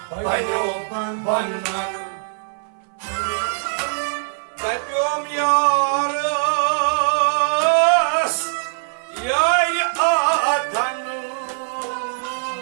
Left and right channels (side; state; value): left; silent; 65 dB below the other